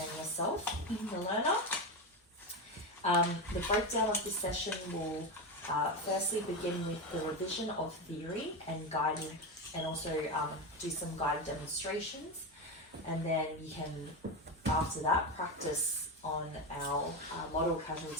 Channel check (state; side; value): normal; both; correlation 0.16